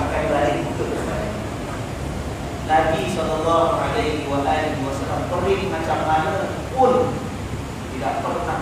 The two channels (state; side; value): identical; both; correlation 1.00